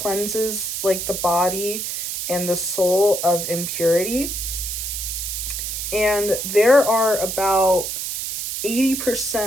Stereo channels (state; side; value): noise; right; hiss, 4 dB below the sound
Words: like the body and the soul of impurity. And there are about